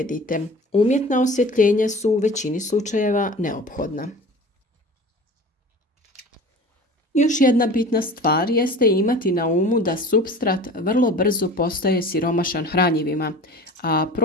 Umjetna osvjetljenja su u većini slučajeva neophodna. Još jedna bitna stvar jeste imati na umu da supstrat vrlo brzo postaje siromašan hranjivima, a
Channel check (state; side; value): normal; both; correlation 0.39